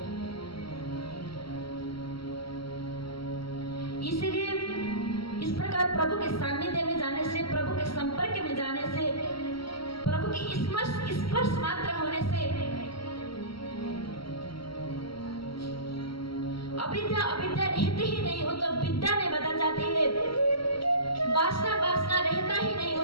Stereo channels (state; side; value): late; right; 0.74 ms